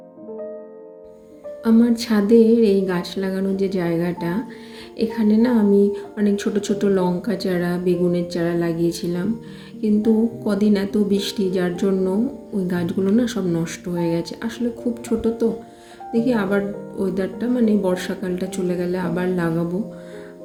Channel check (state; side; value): identical; both; correlation 1.00